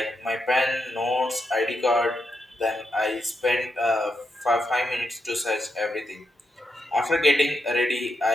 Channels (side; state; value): both; normal; correlation 0.83